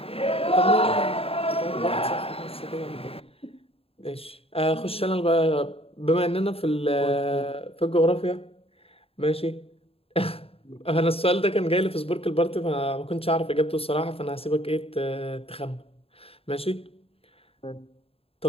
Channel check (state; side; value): late; right; 0.28 ms